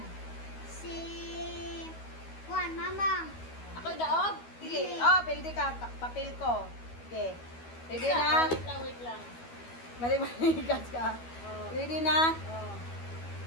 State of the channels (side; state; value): right; late; 12 ms